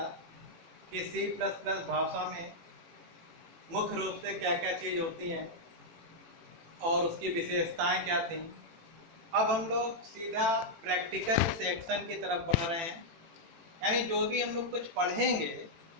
कि सी प्लस प्लस भाषा में मुख्य रूप से क्या क्या चीज़ होती हैं और उसकी विशेषताएं क्या थी। अब हम लोग सीधा प्रैक्टिकल सेक्शन की तरफ बढ़ रहे हैं, यानी जो भी हम लोग कुछ पढ़ेंगे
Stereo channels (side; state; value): left; late; 18 ms